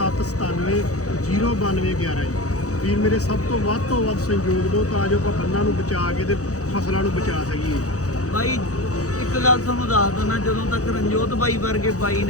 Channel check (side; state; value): right; late; 0.66 ms